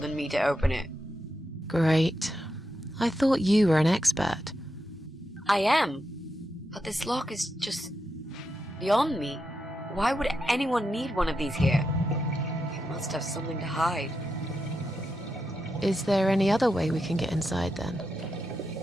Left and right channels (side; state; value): both; normal; correlation 0.86